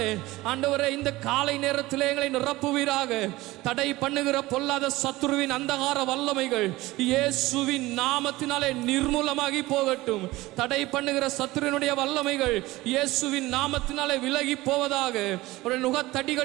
ஆண்டவரே இந்த காலை நேரத்திலே எங்களை நிரப்புவீராக. தடை பண்ணுகிற பொல்லாத சத்துருவின் அந்தகார வல்லமைகள் இயேசுவின் நாமத்தினாலே நிர்மூலமாகி போகட்டும். தடை பண்ணுகிற சத்துருவினுடைய வல்லமைகள் இயேசுவின் நாமத்தினாலே விலகி போவதாக. ஒரு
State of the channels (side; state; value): left; quieter; 19.0 dB